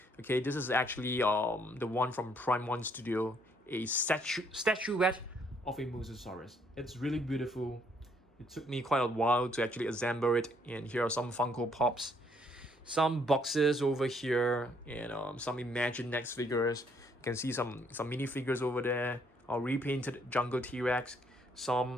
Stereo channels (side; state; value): both; normal; correlation 0.68